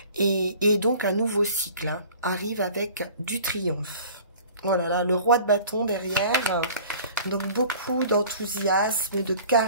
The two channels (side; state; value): both; inverted; correlation -0.46